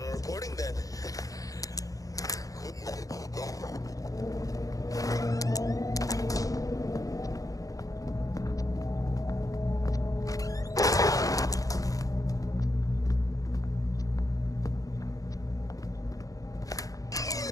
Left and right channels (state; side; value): late; right; 0.17 ms